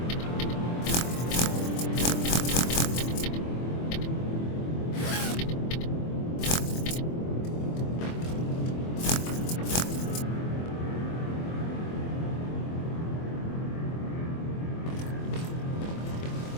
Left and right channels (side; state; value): right; late; 24 ms